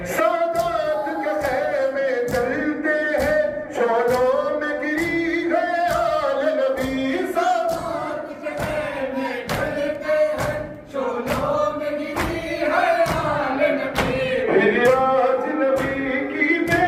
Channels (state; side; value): identical; both; correlation 1.00